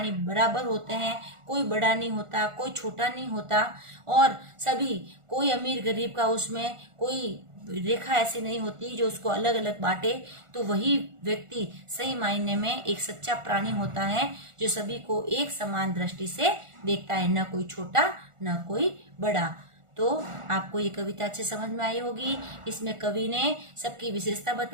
बराबर होते हैं, कोई बड़ा नहीं होता, कोई छोटा नहीं होता, और सभी, कोई अमीर गरीब का उसमें कोई रेखा ऐसी नहीं होती जो उसको अलग अलग बांटे, तो वही व्यक्ति सही मायने में एक सच्चा प्राणी होता है, जो सभी को एक समान दृष्टि से देखता है, न कोई छोटा न कोई बड़ा। तो आपको ये कविता अच्छे समझ में आई होगी। इसमें कवि ने सबकी विशेषता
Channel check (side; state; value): left; late; 1.4 ms